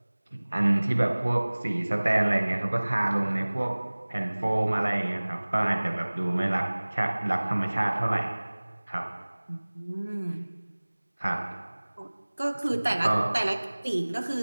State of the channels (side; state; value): both; inverted; correlation -1.00